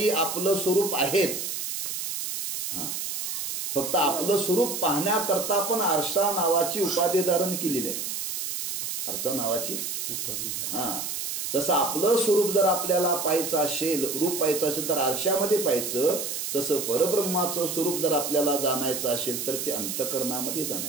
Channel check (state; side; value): noise; right; hiss, 4 dB below the sound